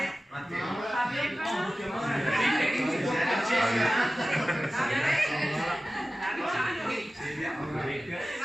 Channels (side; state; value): both; normal; correlation 0.96